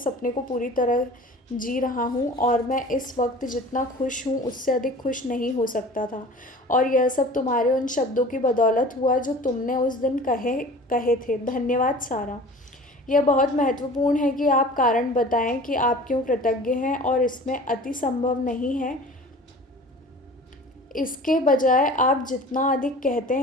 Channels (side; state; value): both; normal; correlation 0.42